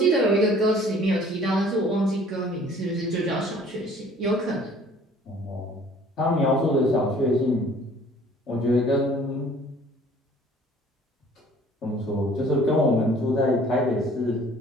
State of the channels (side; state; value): both; normal; correlation 0.53